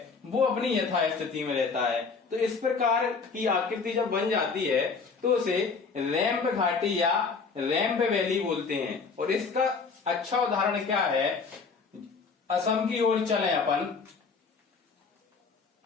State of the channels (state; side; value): quieter; right; 4.9 dB